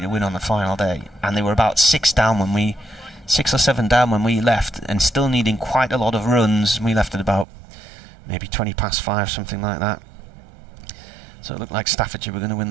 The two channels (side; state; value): left; drops out; at 7.5 s